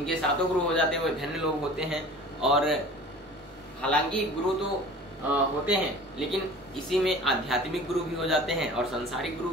सातों गुरु हो जाते हैं, वो धन्य लोग होते हैं। और हालांकि गुरु तो होते हैं, लेकिन इसी में आध्यात्मिक गुरु भी हो जाते हैं और संसारिक गुरु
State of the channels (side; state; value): both; normal; correlation 0.43